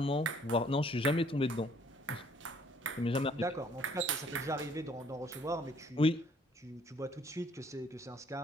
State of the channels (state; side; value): normal; both; correlation 0.62